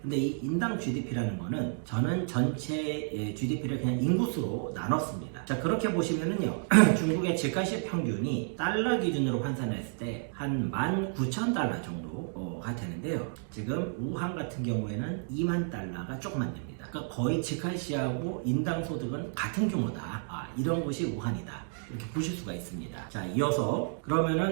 근데 이 인당 GDP라는 거는 저는 전체 GDP를 그냥 인구수로 나눴습니다. 자, 그렇게 보시면은요, 중국의 직할시 평균이 달러 기준으로 환산했을 때 한 19,000달러 정도가 되는데요. 지금 우한 같은 경우에는 2만 달러가 조금만 됩니다. 그러니까 거의 직할시하고 인당 소득은 같은 규모다. 이런 것이 우한이다. 이렇게 보실 수가 있습니다. 자, 이어서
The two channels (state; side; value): silent; left; 57 dB below the other